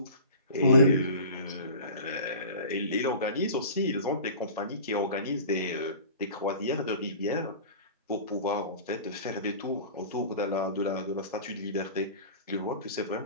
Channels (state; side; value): inverted; both; correlation -0.38